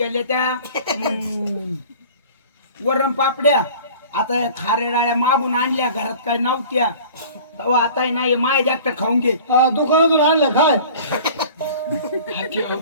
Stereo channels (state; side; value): inverted; both; correlation -0.44